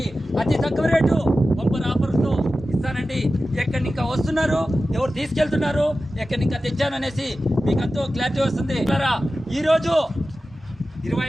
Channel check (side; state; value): both; normal; correlation 0.94